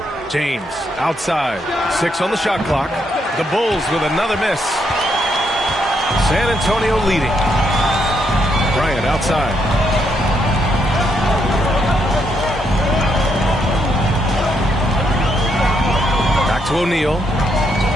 James outside. 6 on the shot clock. The Bulls with another miss. San Antonio leading. Bryant outside. Back to O'Neal.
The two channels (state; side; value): normal; both; correlation 0.77